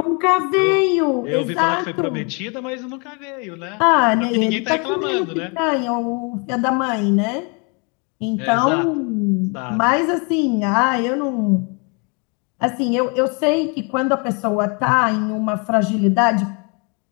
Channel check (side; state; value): right; quieter; 33.7 dB